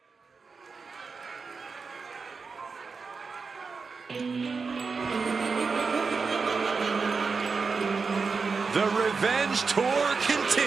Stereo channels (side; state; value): left; quieter; 4.8 dB